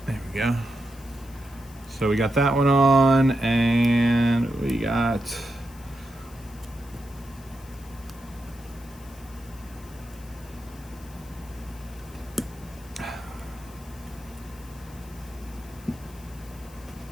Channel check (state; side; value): noise; left; hiss, 23 dB below the sound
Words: There we go. So we got that one on, and we got